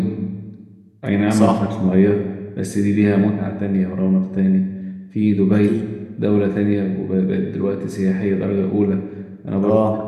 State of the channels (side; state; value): both; identical; correlation 1.00